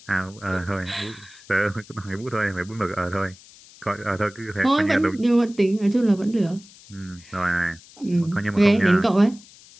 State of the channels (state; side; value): noise; left; hiss, 23 dB below the sound